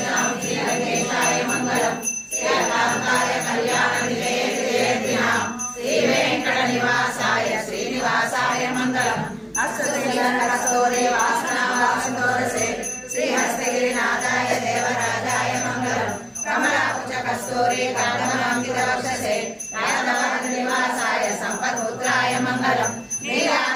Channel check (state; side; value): identical; both; correlation 1.00